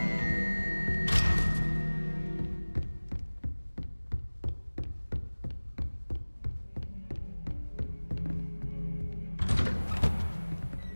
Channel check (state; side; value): inverted; both; correlation -1.00